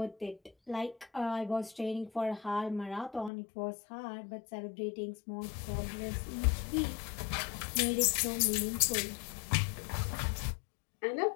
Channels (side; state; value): right; drops out; at 3.3 s